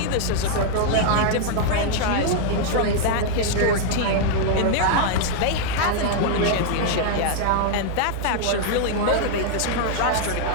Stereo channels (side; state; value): both; different; correlation 0.00